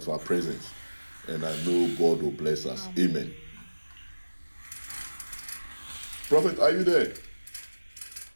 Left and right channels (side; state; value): both; inverted; correlation -1.00